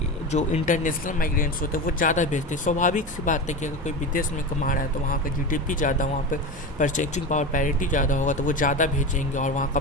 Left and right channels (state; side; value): normal; both; correlation 0.24